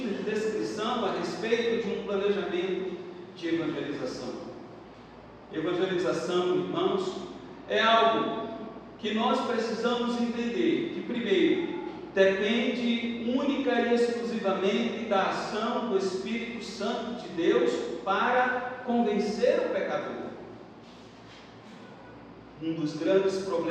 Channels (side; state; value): both; identical; correlation 1.00